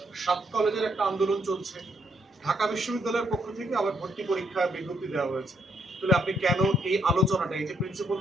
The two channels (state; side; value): normal; both; correlation 0.73